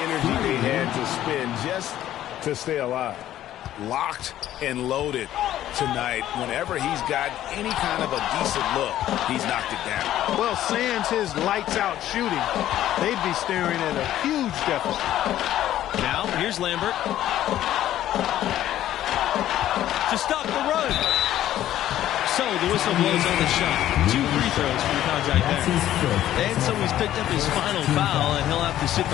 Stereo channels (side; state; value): right; quieter; 12.7 dB